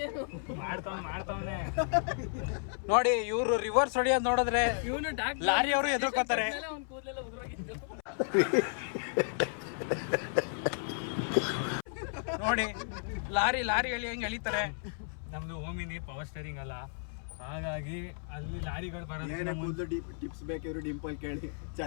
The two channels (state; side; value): silent; right; 56 dB below the other